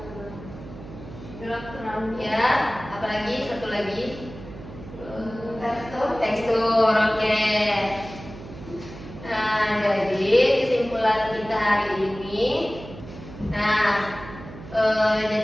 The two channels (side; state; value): right; noise; hum, 14 dB below the sound